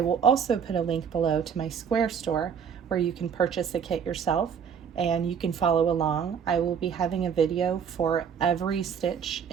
will also put a link below to my Square store where you can purchase the kit yourself and you can follow along. I will be having a video for every stitch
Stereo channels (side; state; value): left; quieter; 7.3 dB